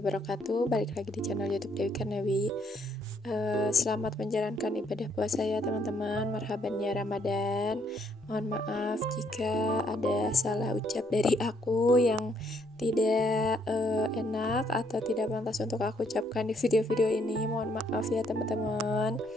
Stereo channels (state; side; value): normal; both; correlation 0.69